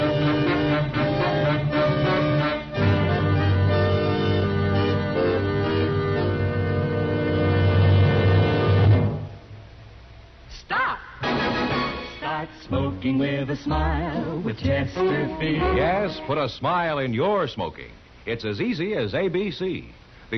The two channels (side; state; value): both; identical; correlation 1.00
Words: Smoking with a smile with Chesterfield. Yes, put a smile in your smoking. It's as easy as ABC.